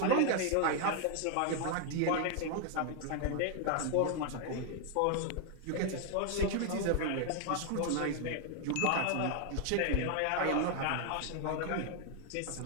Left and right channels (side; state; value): both; different; correlation 0.00